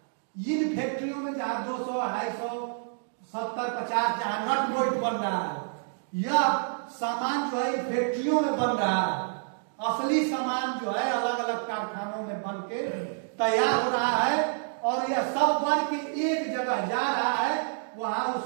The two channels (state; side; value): silent; left; digital silence